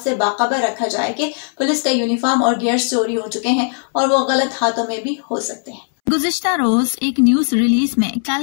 से बाखबर रखा जाए कि पुलिस का यूनिफॉर्म और गियर्स चोरी हो चुके हैं और वो गलत हाथों में भी हो सकते हैं। गुज़िश्ता रोज एक न्यूज रिलीज में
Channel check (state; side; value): silent; right; 68 dB below the other